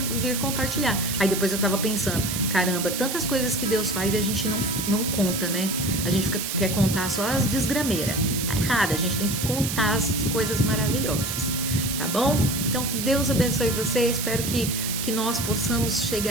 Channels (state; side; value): noise; right; hiss, 4 dB below the sound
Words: vir compartilhar. Aí depois eu tava pensando, caramba, tantas coisas que Deus faz e a gente não conta, né? A gente quer contar só as desgrameiras. Tá errado, a gente tem que contar as coisas maravilhosas, tá bom? Então, que Deus abençoe você, espero que nós possamos